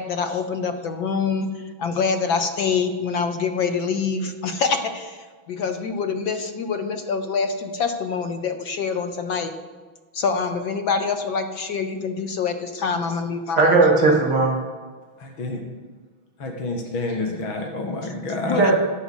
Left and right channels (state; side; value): late; right; 6.1 ms